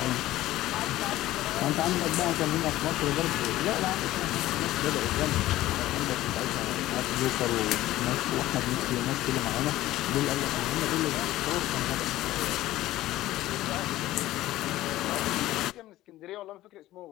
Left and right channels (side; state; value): right; quieter; 15.6 dB